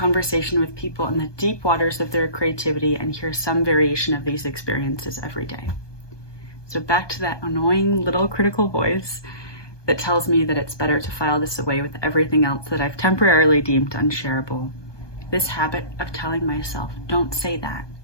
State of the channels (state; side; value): late; right; 1.2 ms